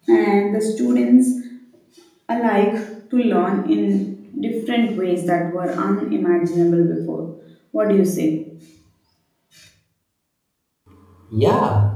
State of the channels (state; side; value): identical; both; correlation 1.00